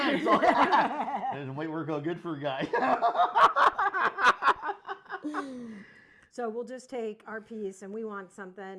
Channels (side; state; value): both; identical; correlation 1.00